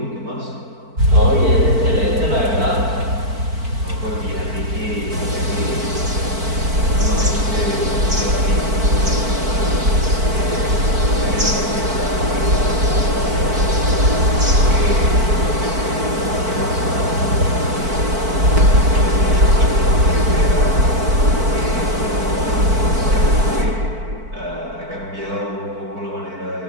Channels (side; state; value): left; late; 4.5 ms